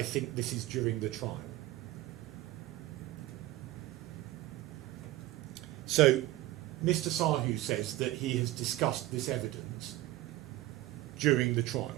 think this is during the trial. So Mr. Sahu says that he has discussed this evidence during the trial.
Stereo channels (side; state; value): left; quieter; 16.4 dB